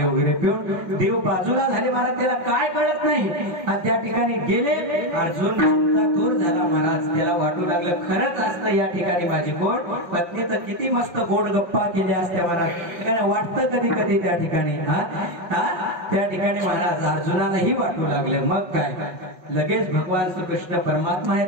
वगैरे पिऊन. देव बाजूला झाले महाराज, त्याला काय कळत नाही. आणि त्या ठिकाणी गेले. अर्जुन दूर झाला महाराज. त्याला वाटू लागलं खरंच असतं या ठिकाणी माझी गोड पत्नी तर किती मस्त गोड गप्पा केल्या असत्या महाराज. वाटतं कधी कधी त्या ठिकाणी त्या ठिकाणी महाराज अर्जुनालाही वाटू लागलं. मग काय, लगेच भगवान श्रीकृष्ण परमात्मा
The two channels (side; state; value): left; late; 5.4 ms